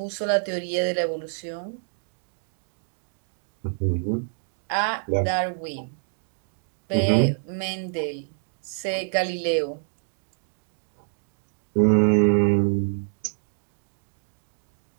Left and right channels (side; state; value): left; silent; digital silence